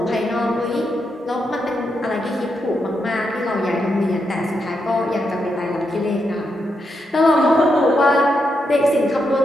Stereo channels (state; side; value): normal; both; correlation 0.83